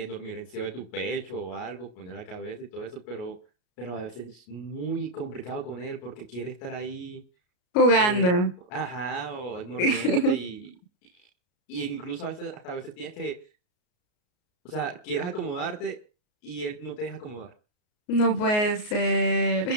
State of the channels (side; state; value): right; late; 33 ms